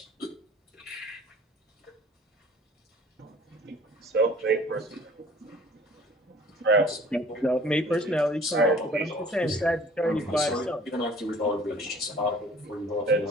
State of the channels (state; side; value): normal; both; correlation 0.51